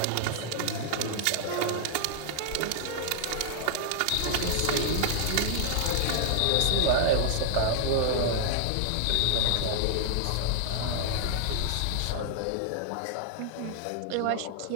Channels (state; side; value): different; both; correlation -0.01